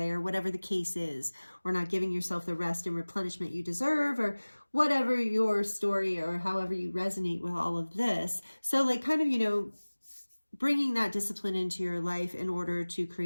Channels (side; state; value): both; inverted; correlation -1.00